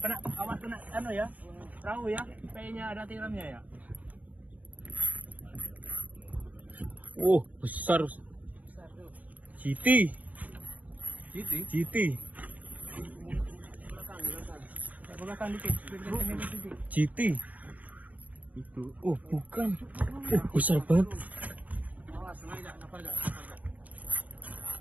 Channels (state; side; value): late; left; 0.075 ms